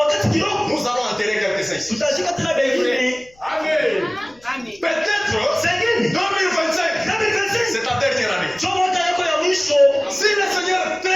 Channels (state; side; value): noise; left; rumble, 30 dB below the sound